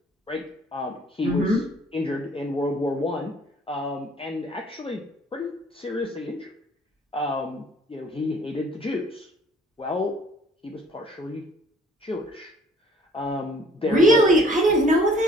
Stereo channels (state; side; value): normal; both; correlation 0.55